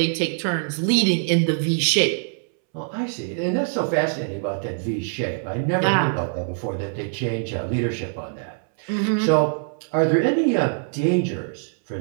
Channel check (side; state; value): left; silent; 63 dB below the other